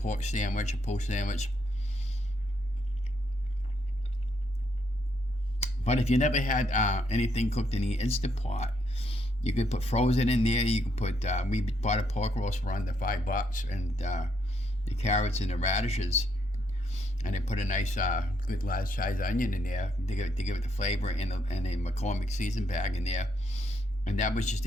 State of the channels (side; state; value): both; normal; correlation 0.75